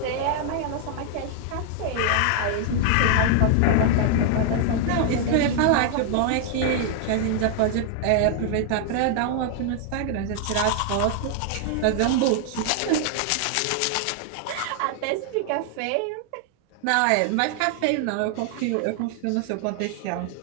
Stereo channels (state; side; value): different; both; correlation 0.00